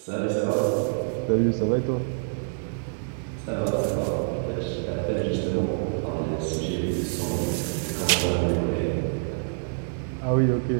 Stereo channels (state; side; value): silent; left; 61 dB below the other